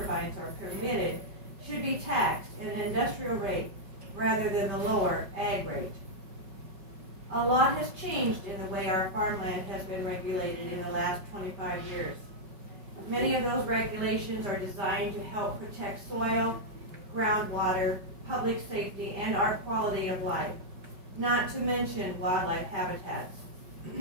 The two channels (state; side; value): late; left; 5.3 ms